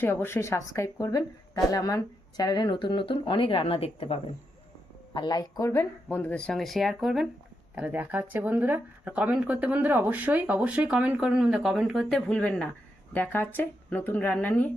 অবশ্যই সাবস্ক্রাইব করবেন, তাহলে আমার চ্যানেলে নতুন অনেক রান্না দেখতে পাবেন। আর লাইক করবেন, বন্ধুদের সঙ্গে শেয়ার করবেন। তাহলে দেখা হচ্ছে বন্ধুরা। আর কমেন্ট করতে বন্ধুরা অবশ্যই কমেন্ট করবেন, কমেন্ট করতে ভুলবেন না। দেখা হচ্ছে নতুন রান্না নিয়ে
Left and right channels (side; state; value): both; normal; correlation 0.83